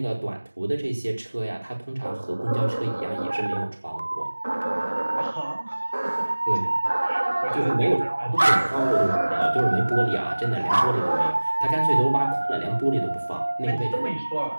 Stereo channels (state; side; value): inverted; both; correlation -1.00